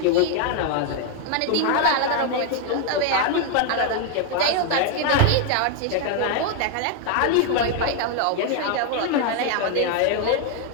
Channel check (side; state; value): both; different; correlation 0.00